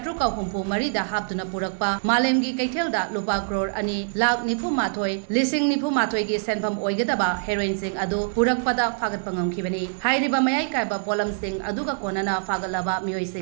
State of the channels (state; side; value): silent; left; 59 dB below the other